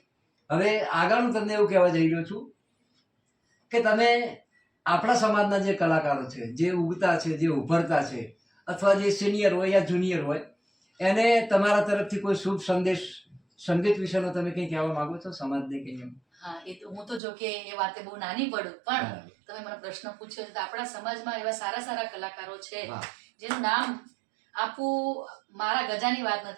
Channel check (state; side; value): drops out; left; at 17.2 s